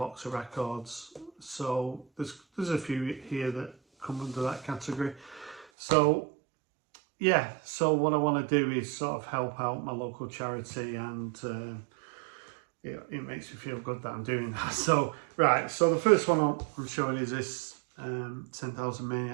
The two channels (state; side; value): drops out; left; at 5.7 s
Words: of records. So there's a few here that come under that category. So yeah, so what I want to do is sort of help out my local charity, and it makes me feel good that I'm doing that. So, right, so the first one I'm showing is this 10,000